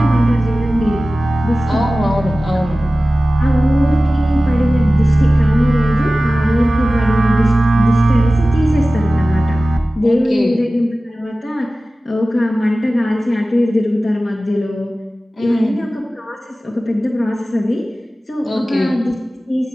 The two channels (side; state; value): both; normal; correlation 0.96